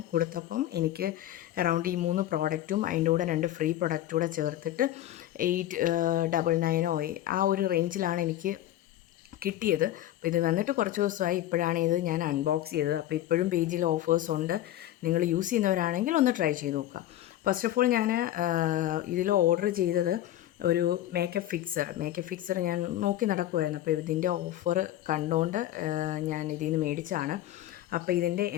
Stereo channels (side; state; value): right; quieter; 13.3 dB